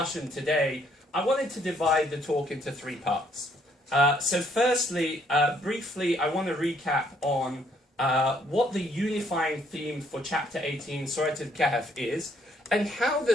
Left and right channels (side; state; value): both; normal; correlation 0.67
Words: today, I wanted to divide the talk into three parts. So firstly, briefly, I want to recap on what the unifying theme for chapter 18, Surah Al-Kahf is, and how